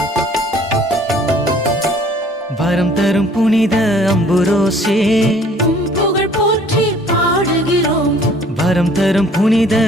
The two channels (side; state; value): both; normal; correlation 0.55